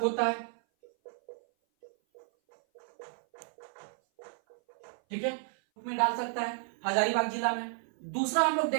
होता है। ठीक है, में डाल सकता है हजारीबाग जिला में। दूसरा हम लोग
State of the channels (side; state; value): left; silent; 56 dB below the other